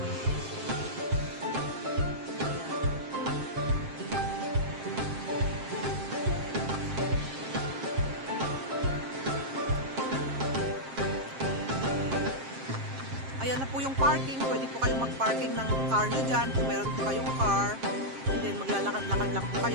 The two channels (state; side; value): late; left; 7.5 ms